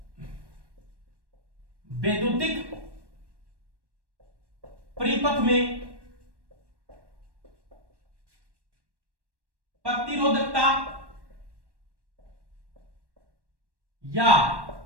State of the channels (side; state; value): left; late; 1.1 ms